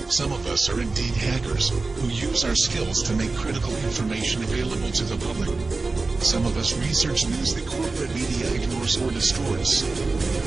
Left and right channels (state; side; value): quieter; left; 3.7 dB